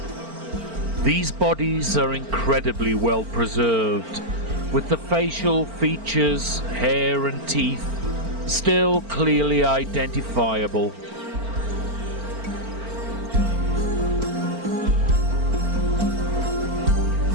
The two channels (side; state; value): left; late; 4.4 ms